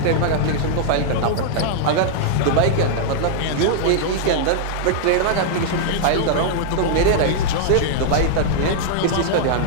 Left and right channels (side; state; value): both; different; correlation -0.01